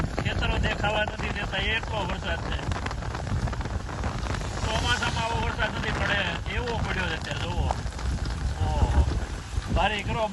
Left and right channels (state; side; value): identical; both; correlation 1.00